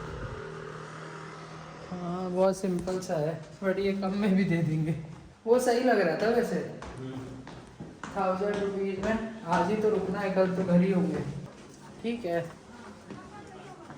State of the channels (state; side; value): identical; both; correlation 1.00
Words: बहुत सिंपल सा है, बट ये कम में भी दे देंगे। वो सही लग रहा था वैसे, 1000 रुपीज़ में। आज ही तो रुकना है, कल तो घर ही होंगे। ठीक है,